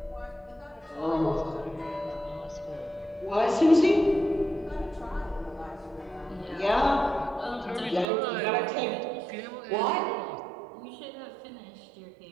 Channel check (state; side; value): drops out; left; at 8.1 s